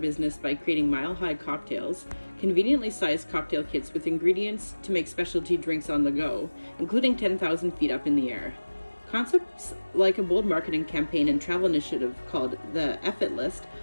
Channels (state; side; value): inverted; both; correlation -1.00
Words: by creating mile-high cocktails, conveniently sized cocktail kits with ingredients to make specialty drinks on the go, including 10,000 feet up in the air. Concepts like a bold marketing campaign and travel initiative called the F-It List